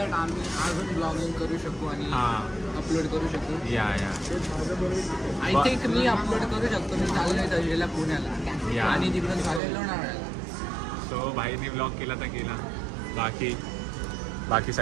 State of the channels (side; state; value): left; drops out; at 9.6 s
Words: आम्ही अजून ब्लॉगिंग करू शकू आणि हां अपलोड करू शकू. या आय थिंक मी अपलोड करू शकतो. मी चाललोय तळेला पुण्याला आणि तिकडून चाललोय लोणावळ्याला. सो भाईने ब्लॉग केला तर केला. बाकी